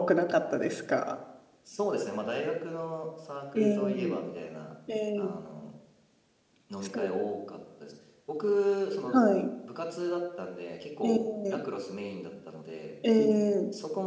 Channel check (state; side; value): identical; both; correlation 1.00